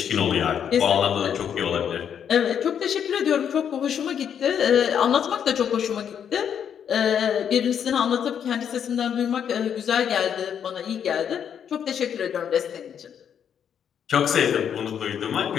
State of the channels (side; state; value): right; quieter; 8.4 dB